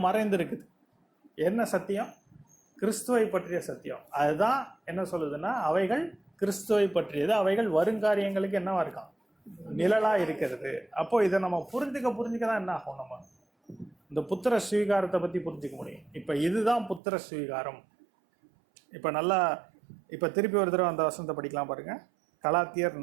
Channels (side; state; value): left; drops out; at 17.0 s